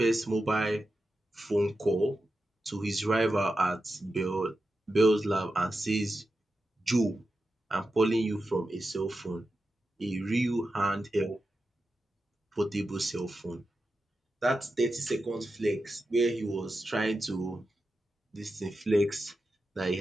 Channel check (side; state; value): both; normal; correlation 0.91